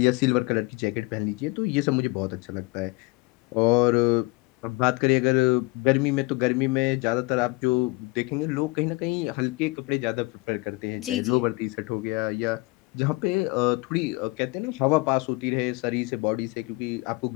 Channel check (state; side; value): quieter; right; 23.9 dB